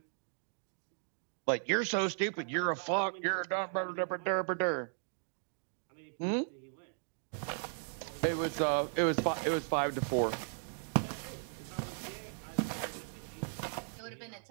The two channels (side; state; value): left; silent; digital silence